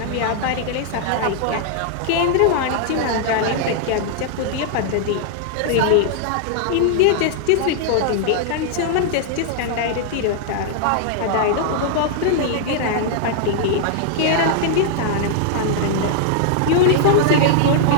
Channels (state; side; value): different; both; correlation -0.01